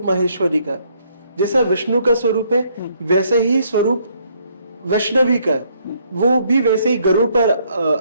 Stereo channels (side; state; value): both; inverted; correlation -0.68